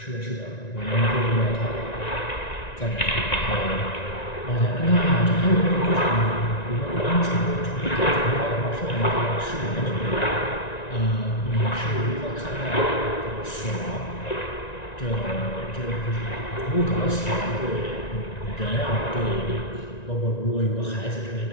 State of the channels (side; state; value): right; late; 1.9 ms